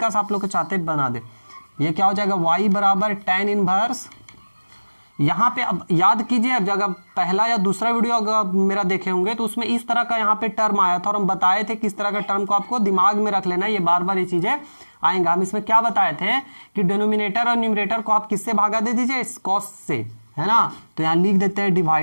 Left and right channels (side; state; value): both; inverted; correlation -1.00